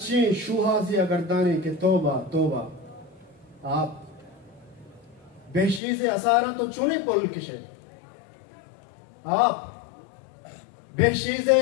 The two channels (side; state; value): right; drops out; at 5.8 s